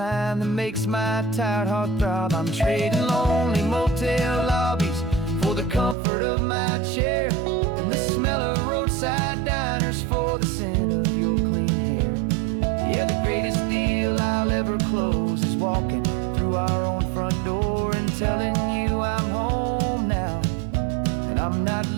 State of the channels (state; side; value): drops out; left; at 6.0 s